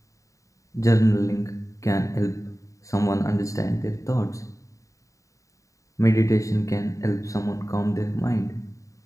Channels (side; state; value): right; late; 0.16 ms